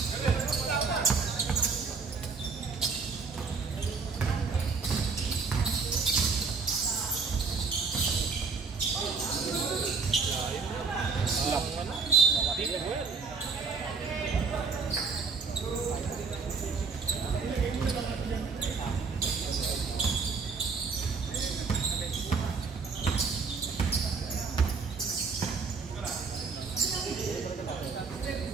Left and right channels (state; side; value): quieter; left; 4.9 dB